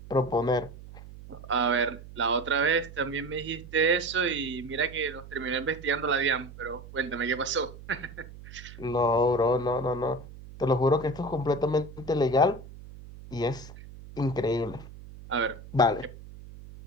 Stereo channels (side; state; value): right; noise; hum, 16 dB below the sound